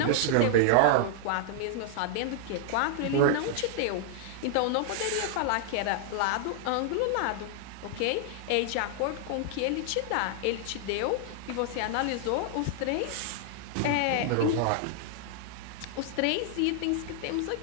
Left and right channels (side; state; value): both; different; correlation -0.01